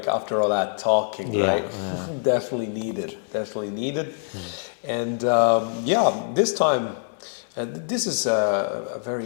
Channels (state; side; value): silent; right; 62 dB below the other